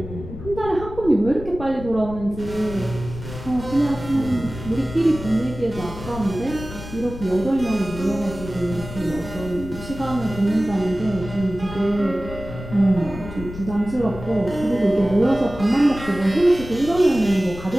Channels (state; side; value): noise; left; rumble, 11 dB below the sound